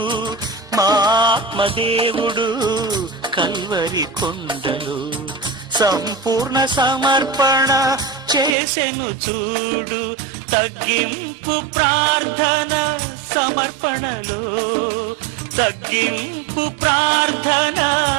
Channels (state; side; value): drops out; left; at 8.6 s